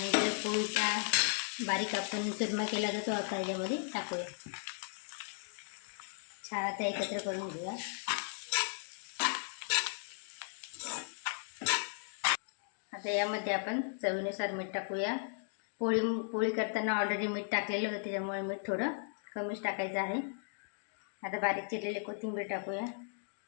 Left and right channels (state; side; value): silent; right; digital silence